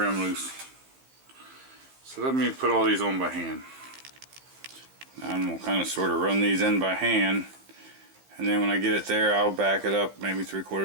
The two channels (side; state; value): left; late; 15 ms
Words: loose. So let me put all these on by hand. Now I'm going to kind of sort of run these in by hand, and then when I get it there, I'll back it up maybe